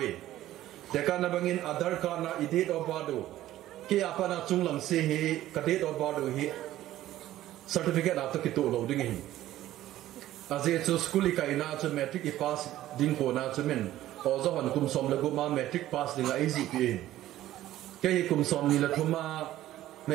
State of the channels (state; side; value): quieter; left; 14.1 dB